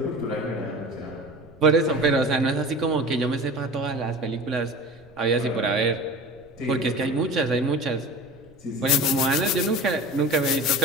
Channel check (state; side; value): noise; right; rumble, 28 dB below the sound